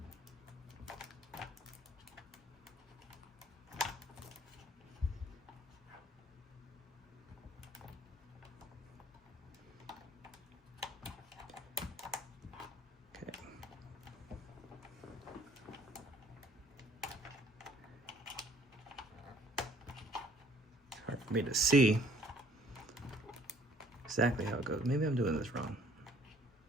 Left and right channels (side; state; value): both; normal; correlation 0.59